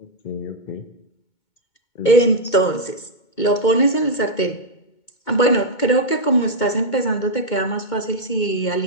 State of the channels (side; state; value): right; late; 2.2 ms